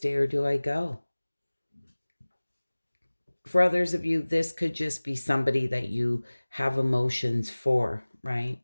or do I go? For others of you, this could just be somebody that you have emotions for, right?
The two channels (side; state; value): both; inverted; correlation -1.00